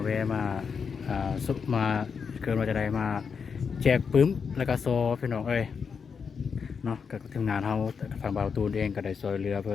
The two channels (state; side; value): quieter; right; 6.0 dB